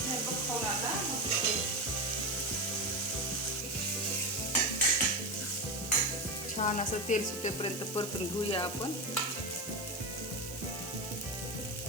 खाऊन आता छान असं तेल सुटेपर्यंत परतून घेऊया आपण.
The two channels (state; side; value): noise; right; hiss, 14 dB below the sound